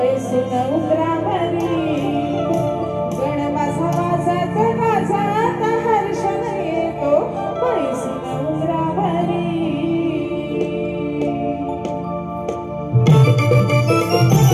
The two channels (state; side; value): identical; both; correlation 1.00